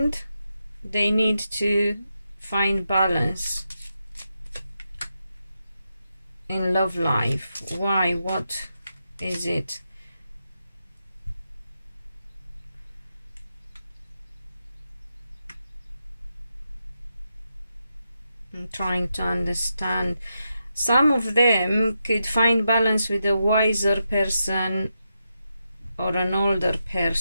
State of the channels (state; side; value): inverted; both; correlation -0.86